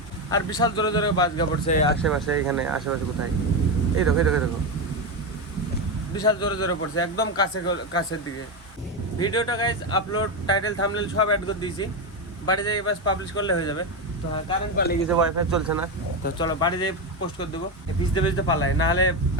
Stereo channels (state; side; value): normal; both; correlation 0.12